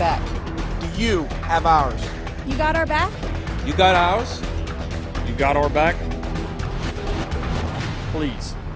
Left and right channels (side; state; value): both; identical; correlation 1.00